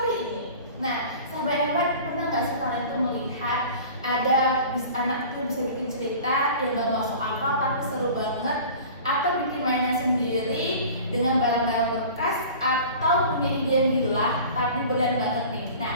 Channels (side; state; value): both; inverted; correlation -0.41